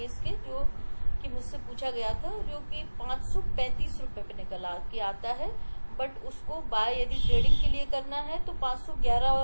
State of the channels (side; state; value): both; inverted; correlation -1.00